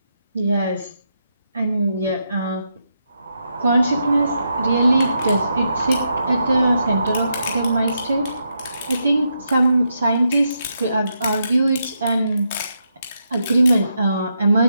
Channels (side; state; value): both; inverted; correlation -0.82